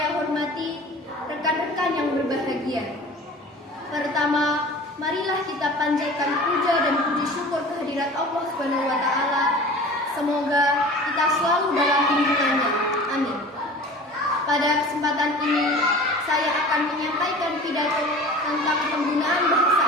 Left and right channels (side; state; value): both; normal; correlation 0.40